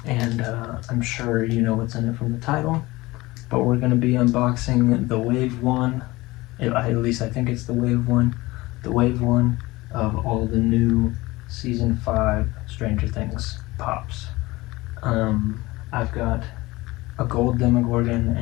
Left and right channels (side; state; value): right; quieter; 20.6 dB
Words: and I'm sure you know what's in it from the title, but we're going to be unboxing the Wave 1, at least I think it's the Wave 1, of all the new Season 5 Stranger Things pops. I've got a gold Demogorgon